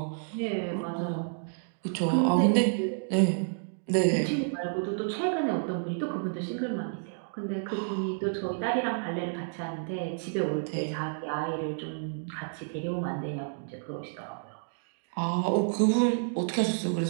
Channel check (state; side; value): silent; left; digital silence